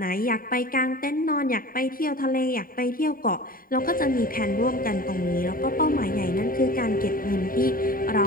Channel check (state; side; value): late; right; 0.41 ms